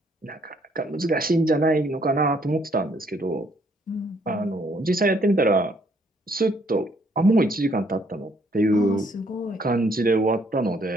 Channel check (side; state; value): both; normal; correlation 0.67